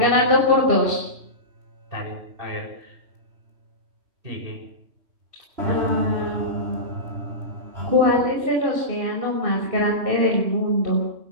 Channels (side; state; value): left; late; 3.1 ms